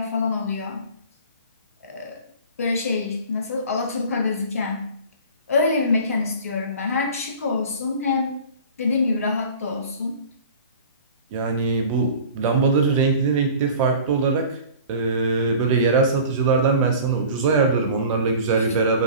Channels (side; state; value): both; inverted; correlation -0.42